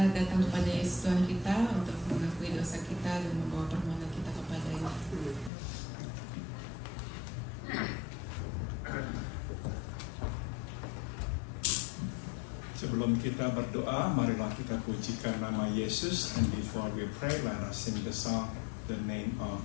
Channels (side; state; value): right; drops out; at 5.5 s